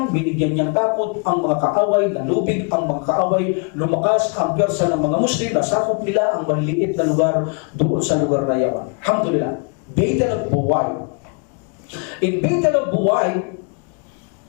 binigyan niyang takot ang mga kaaway, nalubig ang mga kaaway, lumakas ang pwersa ng mga Muslim, nasakop nila ang maliliit na lugar doon sa lugar na iyon. Alhamdulillah. Beit al-Buway. In Beit al-Buway,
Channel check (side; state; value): right; quieter; 36.1 dB